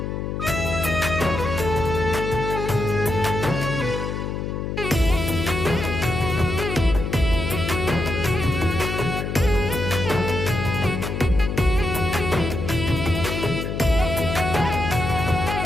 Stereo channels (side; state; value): left; noise; hum, 4 dB below the sound